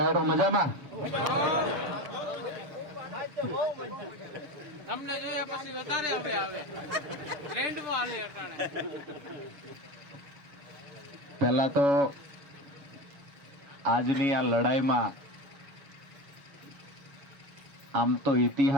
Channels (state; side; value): late; left; 6.7 ms